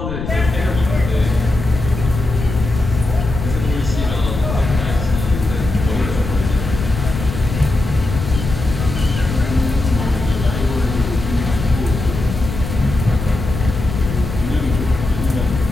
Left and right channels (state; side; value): noise; left; rumble, 6 dB below the sound